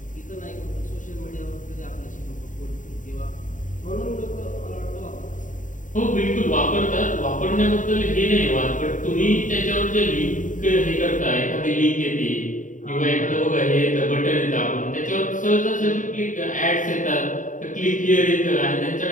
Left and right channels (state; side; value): late; right; 0.37 ms